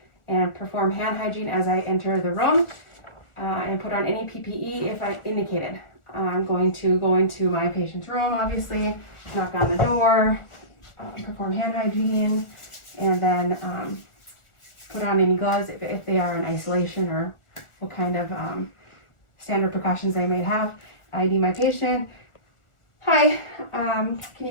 and perform hand hygiene as I enter the room and put on any PPE if I indicated. I'm going to go into my patient's room, obviously, knock on the door, perform hand hygiene, and then put on any gloves if they are in isolation or what kind of standard precautions they may have. ID my patient. Hi, can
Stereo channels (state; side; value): late; right; 1.4 ms